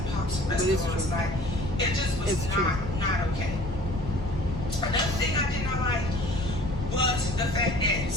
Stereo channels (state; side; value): normal; both; correlation 0.49